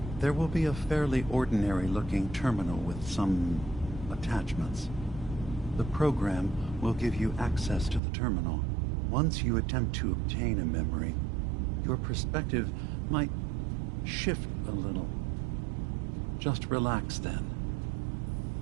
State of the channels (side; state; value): left; drops out; at 8.0 s